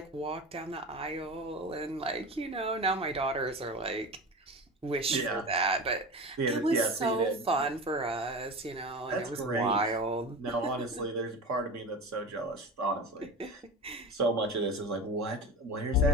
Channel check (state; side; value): normal; both; correlation 0.29